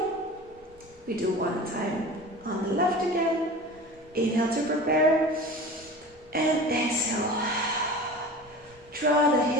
We do one time on the left again. Inhale to prepare. And exhale. Draw the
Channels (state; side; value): normal; both; correlation 0.36